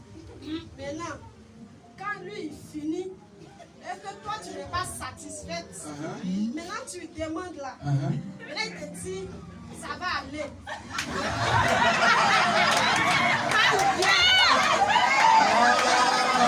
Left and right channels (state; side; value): identical; both; correlation 1.00